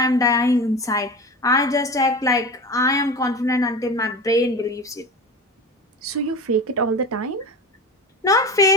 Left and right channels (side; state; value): both; normal; correlation 0.30